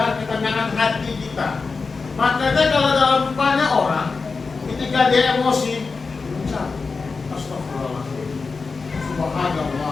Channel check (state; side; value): quieter; right; 4.5 dB